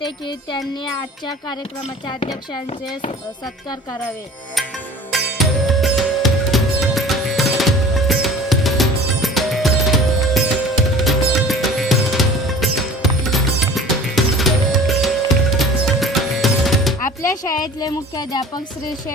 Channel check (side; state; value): both; normal; correlation 0.44